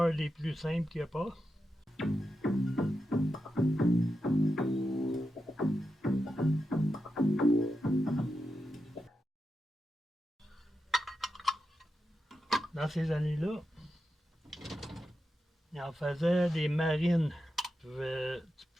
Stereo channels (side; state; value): both; normal; correlation 0.88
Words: des plus simples qu'il n'y a pas. Dans ces années-là, il en faisait des marines. Tu